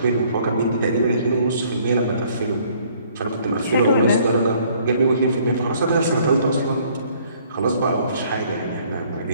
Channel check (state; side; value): inverted; both; correlation -0.61